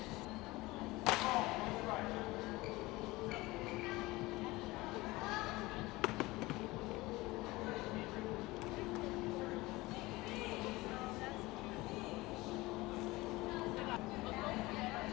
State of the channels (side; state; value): right; quieter; 20.7 dB